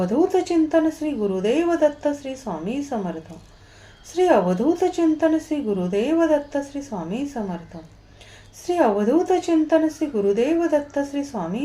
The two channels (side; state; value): both; identical; correlation 1.00